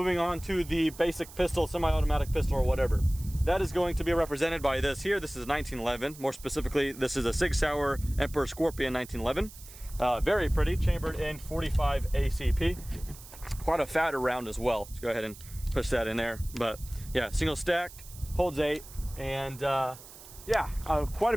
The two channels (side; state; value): right; noise; hiss, 18 dB below the sound